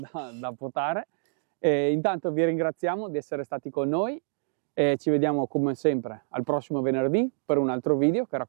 da potare. Intanto vi ringraziamo di essere stati con noi e ci vediamo come sempre al prossimo venerdì per un altro video che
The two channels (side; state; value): left; silent; digital silence